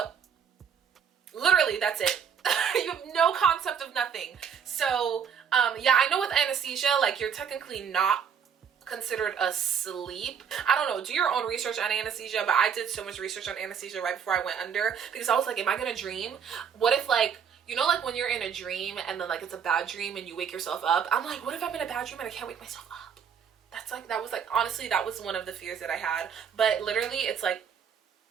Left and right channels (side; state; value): left; quieter; 7.4 dB